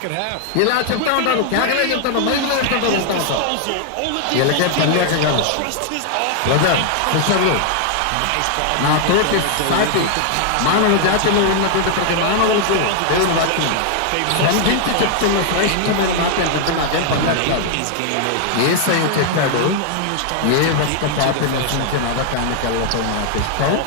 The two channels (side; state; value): both; different; correlation 0.00